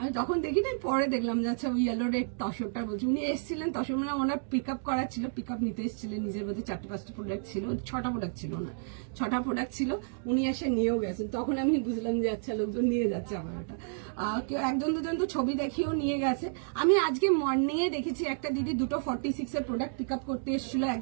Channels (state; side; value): silent; left; digital silence